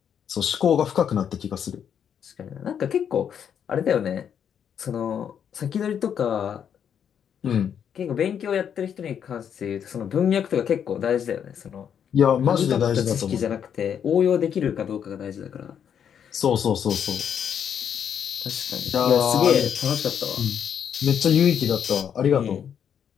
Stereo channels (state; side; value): quieter; right; 8.3 dB